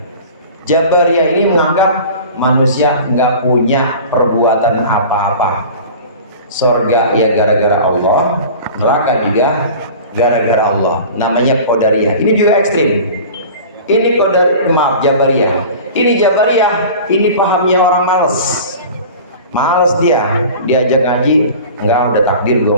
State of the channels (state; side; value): inverted; both; correlation -0.39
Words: Jabariyah ini menganggap manusia nggak punya perbuatan apa-apa. Surga ya gara-gara Allah, neraka juga gara-gara Allah. Namanya Qadariyah. Ini juga ekstrim. Ini Jabariyah. Ini Jabariyah, ini pahamnya orang males dia. Diajak ngaji, enggak, udah takdir gue